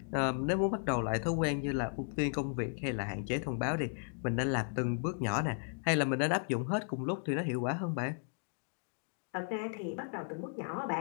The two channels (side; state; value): right; silent; 54 dB below the other